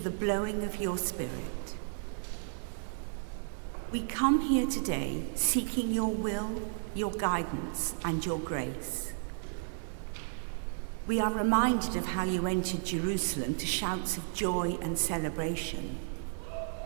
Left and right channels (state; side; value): silent; left; digital silence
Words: blowing of your Spirit. We come here today seeking your will, your guidance, and your grace. We are reminded of how you entered Jerusalem to shouts of joy and celebration.